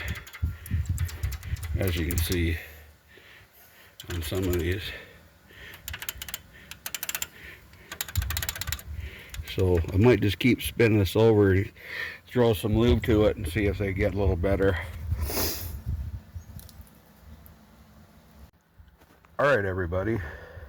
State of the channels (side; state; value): both; identical; correlation 1.00